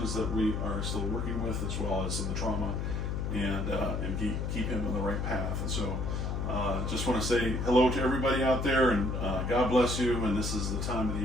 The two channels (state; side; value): noise; left; hum, 1 dB below the sound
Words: that we are still working with, as well as some of the trauma, and keep him on the right path. And so just want to say hello to everybody out there, and God bless you. And this is the time of the